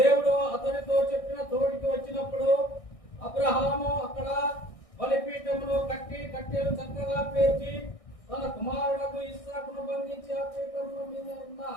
అతనితో చెప్పిన తోటికి వచ్చినప్పుడు అబ్రహాము అక్కడ బలిపీఠమును కట్టి కట్టెలు చక్కగా పేర్చి తన కుమారులకు ఇస్సాకును బంధించి ఆ పీఠముల మీద ఉన్న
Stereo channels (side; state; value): right; late; 1.6 ms